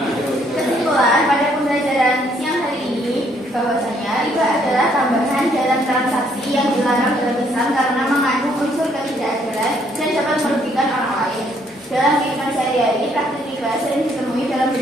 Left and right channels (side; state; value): both; normal; correlation 0.68